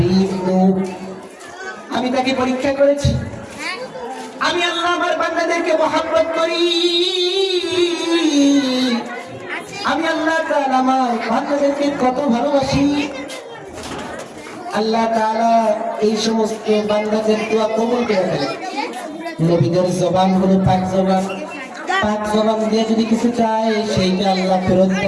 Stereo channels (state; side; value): identical; both; correlation 1.00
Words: নূহ, আমি তাকে পরীক্ষা করেছি, আমি আল্লাহ আমার বান্দাদেরকে মহব্বত করি, আমি আল্লাহ তাআলা আমার বান্দাদেরকে কত ভালোবাসি। আল্লাহ তাআলা এই সমস্ত বান্দাদের দোয়া কবুল করে ফেলেন। নবীদের জবান হলো পাক জবান, পাক জবান দিয়ে যদি কিছু চায় সেইটা আল্লাহ ফেরত